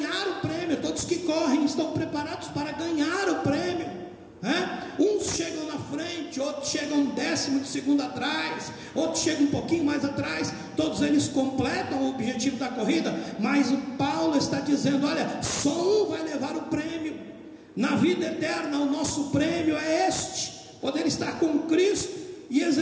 o prêmio. Todos que correm estão preparados para ganhar o prêmio, uns chegam na frente, outros chegam um décimo de segundo atrás, outros chegam um pouquinho mais atrás. Todos eles completam o objetivo da corrida, mas o Paulo está dizendo: olha, só um vai levar o prêmio. Na vida eterna, o nosso prêmio é este: poder estar com Cristo e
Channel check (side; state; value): both; identical; correlation 1.00